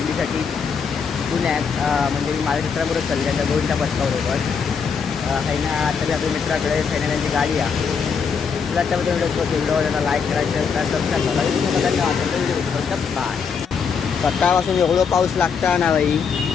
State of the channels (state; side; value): quieter; right; 6.1 dB